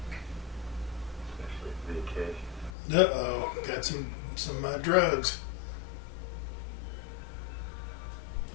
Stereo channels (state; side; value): drops out; right; at 2.7 s